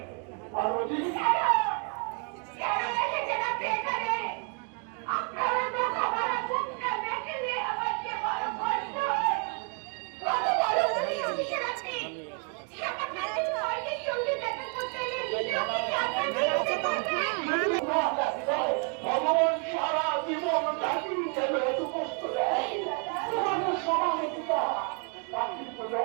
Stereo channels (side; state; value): left; quieter; 39.4 dB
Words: পার্বতী ভগবান সারা জীবন জাতির জন্য এত কষ্ট দেয়, তোমাদের সমাহিতা